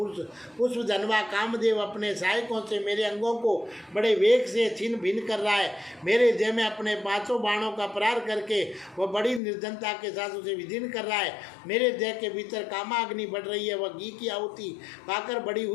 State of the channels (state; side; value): drops out; right; at 9.4 s